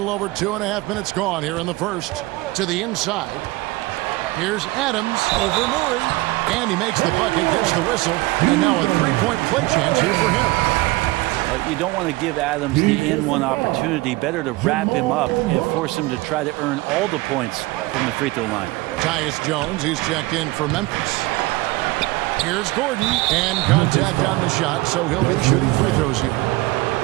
over 2.5 minutes gone here in the first. To the inside. Here's Adams over Murray. And he makes the bucket, gets the whistle. And now a 3-point play chance here for him. You don't want to give Adams the in-one opportunity. Better to wrap him up and force him to try to earn all the points from the free throw line. Tyus Jones, he's checked in for Memphis. Here's Gordon, and contact on the shot, so he'll be shooting free throws here.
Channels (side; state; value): left; quieter; 20.9 dB